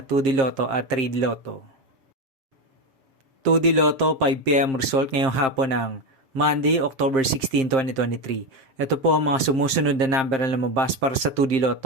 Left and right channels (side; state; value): left; late; 7.5 ms